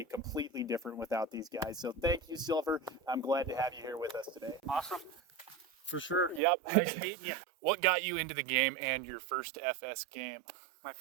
completely different without these guys. So thank you, Silver. I'm glad to have you here with us today. Awesome. For sure. Yep. Nice meeting you. What got you into the game and your first FS game? My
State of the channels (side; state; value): left; drops out; at 6.4 s